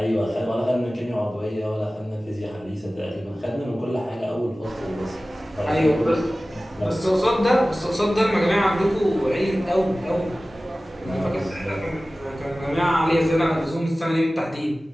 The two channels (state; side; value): normal; both; correlation 0.97